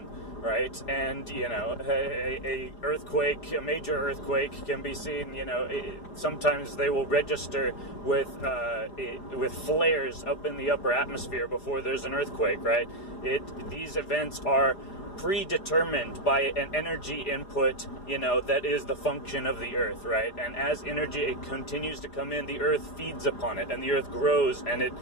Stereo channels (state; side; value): late; right; 4.9 ms